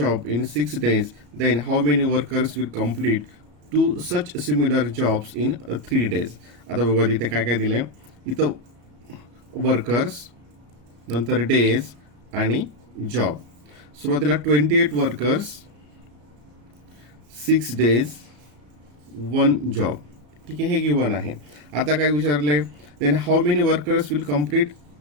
in 6 days, then how many workers will complete two such similar jobs in 3 days. आता बघा इथे काय काय दिलंय. इथं वर्कर्स, नंतर डेज आणि जॉब. सुरुवातीला 28 वर्कर्स, 6 days, 1 जॉब. ठीक आहे, हे गिवन आहे. आता काय विचारलंय, then how many workers will complete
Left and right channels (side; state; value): left; late; 34 ms